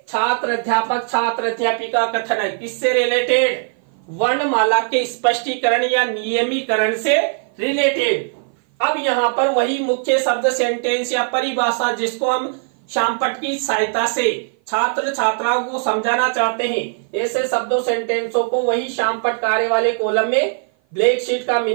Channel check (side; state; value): left; silent; 56 dB below the other